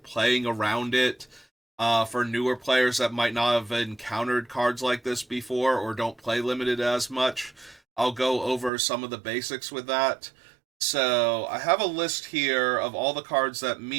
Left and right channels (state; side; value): drops out; left; at 8.7 s